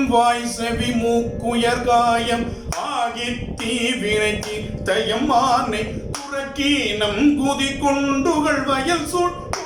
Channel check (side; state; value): both; identical; correlation 1.00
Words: வாய் செவி மூக்குயர் காயம் ஆகி தீவினைக்கு தயமானை புறக்கீனம் குதி கொண்டுகள் வயல் சூழ்